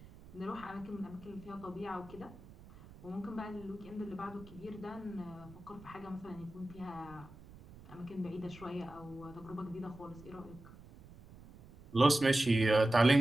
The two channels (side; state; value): right; noise; rumble, 19 dB below the sound